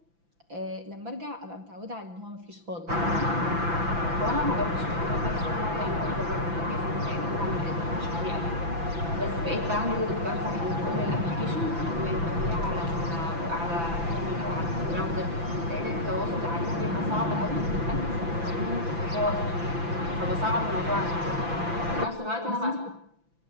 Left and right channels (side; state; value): left; late; 5.9 ms